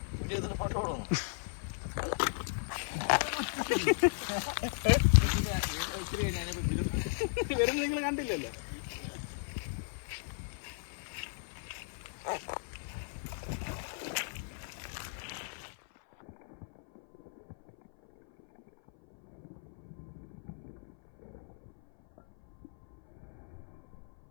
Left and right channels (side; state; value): right; silent; 54 dB below the other